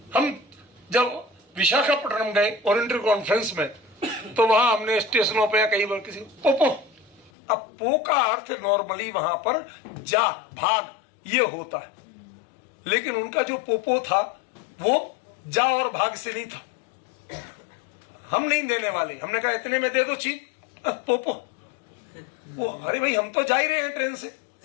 हम जब विशाखापट्टनम गए ओरिएंटल कॉन्फ्रेंस में, तो वहां हमने स्टेशनों पे या कई बार किसी पोपो, अब पो का अर्थ नॉर्मली वहां पर जा, भाग, ये होता है, लेकिन उनका जो पोपो था वो जा और भाग से नहीं था। हम नहीं देने वाले, हमने कहा इतने में दे दो चीज, पोपो। वो अरे भाई हम तो जा ही रहे हैं ट्रेन से,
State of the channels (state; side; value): drops out; right; at 7.3 s